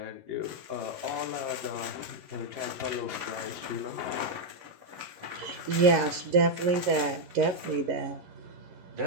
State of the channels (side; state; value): left; late; 11 ms